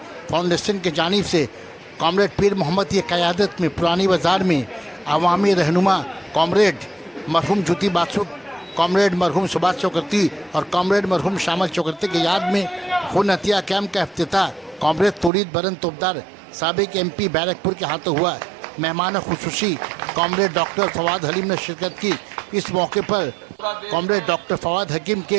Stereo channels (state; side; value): drops out; left; at 15.3 s